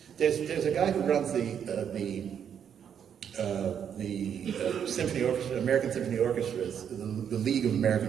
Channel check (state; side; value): quieter; left; 8.3 dB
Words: there's a guy who runs the Symphony Orchestra, American Symphony Orchestras, the League of